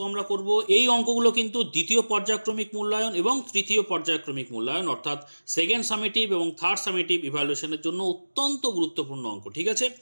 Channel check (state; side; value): inverted; both; correlation -1.00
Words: আমরা করব। এই অঙ্কগুলো কিন্তু দ্বিতীয় পর্যায়ক্রমিক মূল্যায়ন এবং তৃতীয় পর্যায়ক্রমিক মূল্যায়ন অর্থাৎ সেকেন্ড সামেটিভ এবং থার্ড সামেটিভ ইভ্যালুয়েশনের জন্য অত্যন্ত গুরুত্বপূর্ণ অঙ্ক। ঠিক আছে,